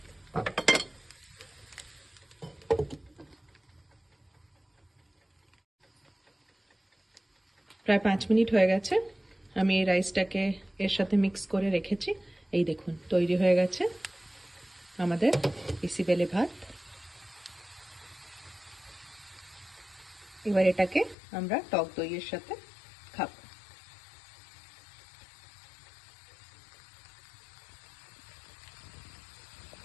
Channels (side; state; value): right; drops out; at 21.2 s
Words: প্রায় 5 মিনিট হয়ে গেছে। আমি এই রাইসটাকে এর সাথে মিক্স করে রেখেছি। এই দেখুন, তৈরি হয়ে গেছে আমাদের বিসিবেলে ভাত। এবার এটাকে আমরা টক দইয়ের সাথে খাবো।